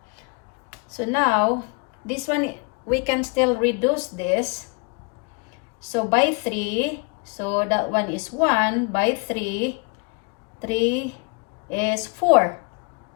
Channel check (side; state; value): right; quieter; 33.7 dB